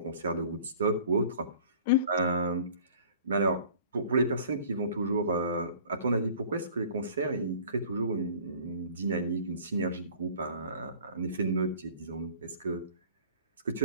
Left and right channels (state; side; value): inverted; both; correlation -0.48